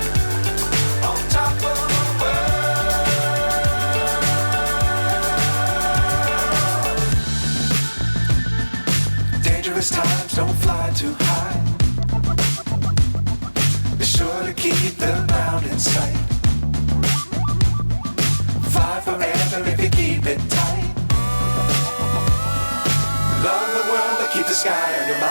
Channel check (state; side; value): inverted; both; correlation -1.00